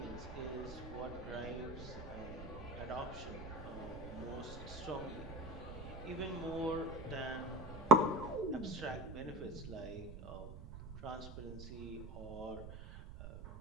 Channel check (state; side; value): noise; right; rumble, 10 dB below the sound